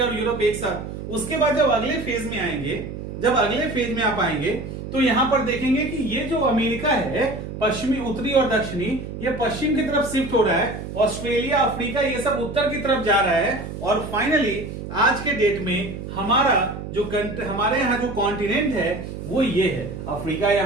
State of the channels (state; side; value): noise; right; hum, 8 dB below the sound